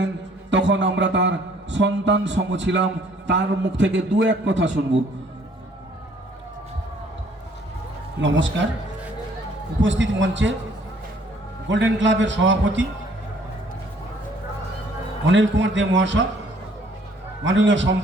তখন আমরা তার সন্তান সম ছিলাম। তার মুখ থেকে দু এক কথা শুনব। নমস্কার। উপস্থিত মঞ্চে গোল্ডেন ক্লাবের সভাপতি অনিল কুমার দে মহাশয়, মাননীয়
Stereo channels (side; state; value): both; normal; correlation 0.60